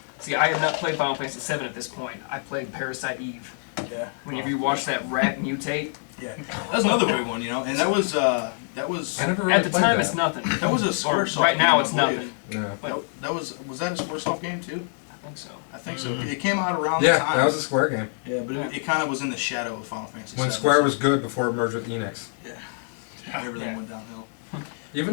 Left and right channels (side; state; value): right; silent; digital silence